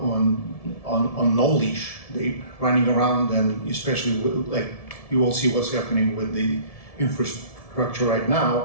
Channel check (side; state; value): right; late; 1.7 ms